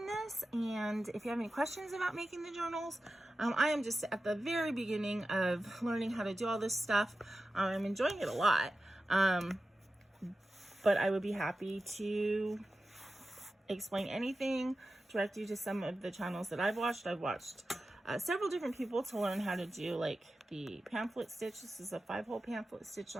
this, and if you have any questions about making the journals, I am just at the very beginning of learning how to do all this stuff. I'm enjoying it a lot, but I would be happy to explain anything, direct you to some of the channels that I've watched. I've watched several different people to learn how to do like the pamphlet stitch. This is a 5-hole pamphlet stitch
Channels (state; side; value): normal; both; correlation 0.93